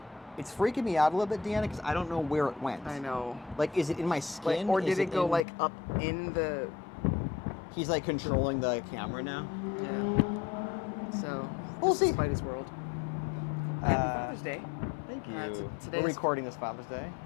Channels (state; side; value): drops out; right; at 5.5 s